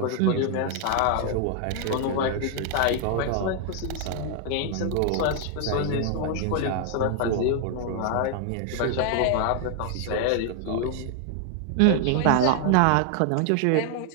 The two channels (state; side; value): different; both; correlation 0.00